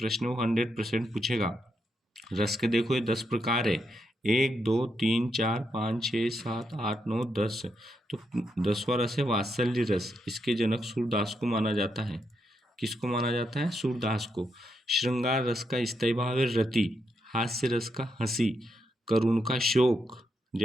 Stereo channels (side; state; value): both; normal; correlation 0.81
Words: वो 100% पूछेगा। रस के देखो ये 10 प्रकार है, 1 2 3 4 5 6 7 8 9 10। तो 10वां रस है वात्सल्य रस। इसके जनक सूरदास को माना जाता है किसको माना जाता है? सूरदास को। श्रृंगार रस का स्थायी भाव है रति, हास्य रस का हंसी, करुण का शोक,